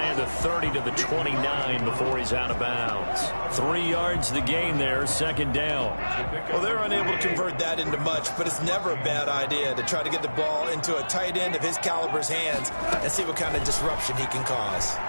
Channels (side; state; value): both; inverted; correlation -1.00